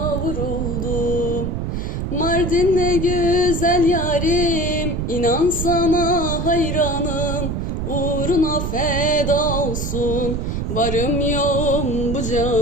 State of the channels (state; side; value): noise; right; rumble, 2 dB below the sound